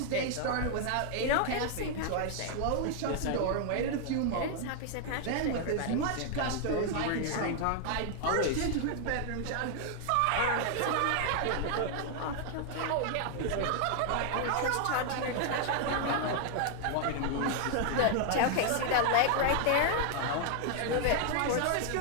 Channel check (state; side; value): different; both; correlation 0.00